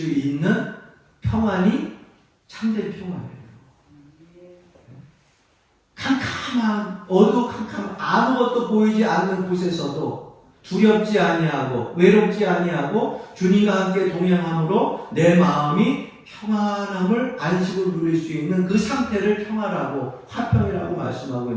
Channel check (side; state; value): both; identical; correlation 1.00